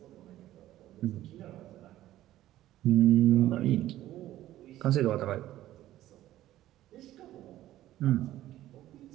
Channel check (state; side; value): quieter; left; 14.2 dB